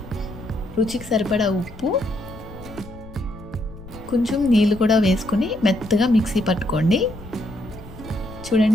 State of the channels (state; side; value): noise; left; rumble, 17 dB below the sound